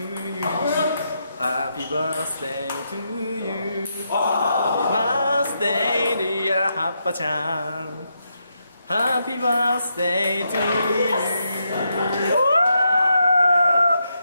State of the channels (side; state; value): both; inverted; correlation -0.81